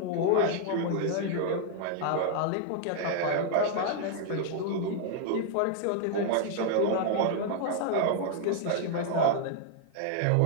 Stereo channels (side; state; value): both; different; correlation 0.00